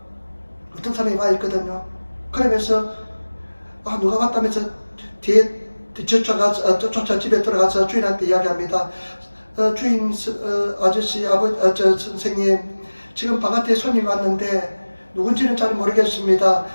어떤 사람이 와 있거든요. 그러면서 누가 왔다면서 뒤에 쫓아 집에 들어가서 주인한테 이야기합니다. 주인 아저씨 선생님 지금 바깥에 손님 왔는데 누군지는 잘 모르겠습니다.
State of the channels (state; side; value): inverted; both; correlation -1.00